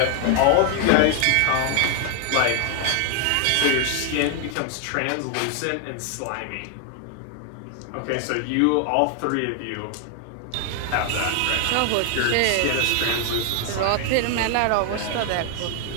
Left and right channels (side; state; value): both; different; correlation 0.00